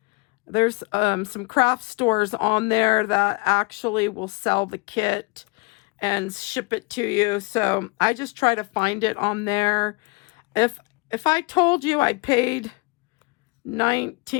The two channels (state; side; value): quieter; right; 28.7 dB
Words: There's some craft stores on there that actually will sell the kit and ship it to you. So I just try to find it on there. If I told you I paid